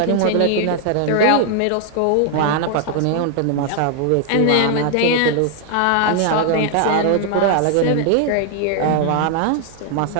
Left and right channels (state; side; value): different; both; correlation 0.00